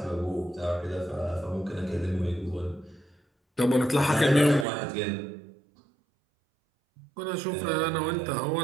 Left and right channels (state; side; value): drops out; left; at 4.7 s